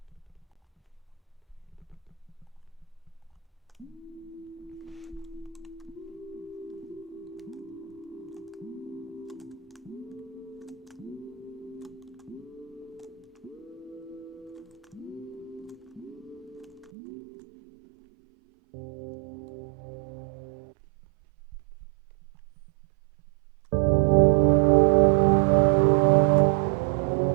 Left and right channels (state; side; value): drops out; left; at 16.9 s